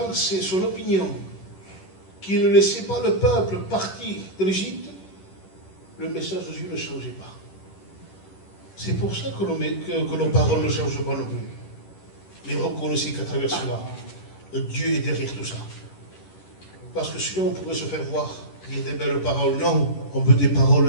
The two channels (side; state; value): right; late; 10 ms